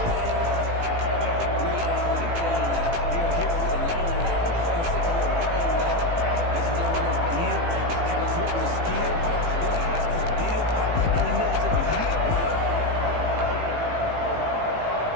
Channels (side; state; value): left; late; 18 ms